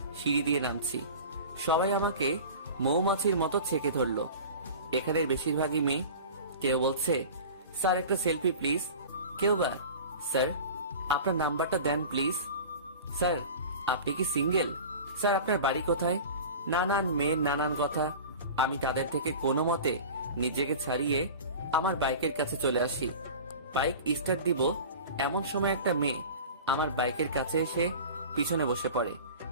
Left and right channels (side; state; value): both; inverted; correlation -0.36